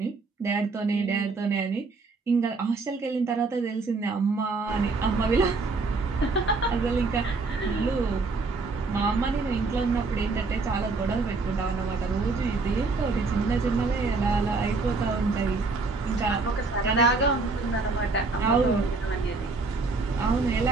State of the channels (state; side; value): quieter; left; 3.9 dB